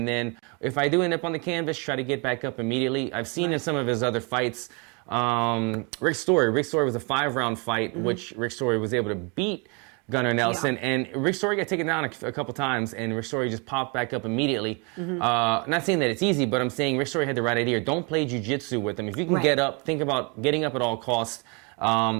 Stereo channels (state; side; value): quieter; left; 32.6 dB